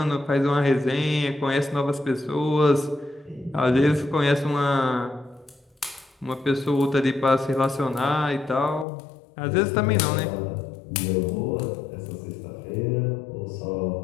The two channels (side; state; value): right; drops out; at 8.8 s